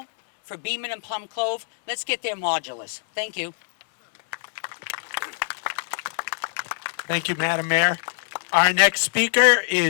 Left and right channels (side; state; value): right; silent; digital silence